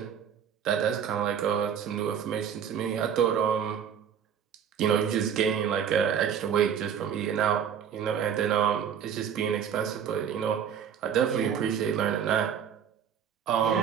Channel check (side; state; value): left; quieter; 8.2 dB